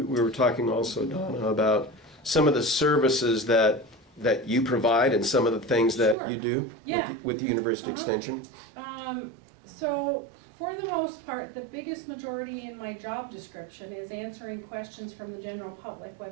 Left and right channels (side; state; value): left; drops out; at 6.2 s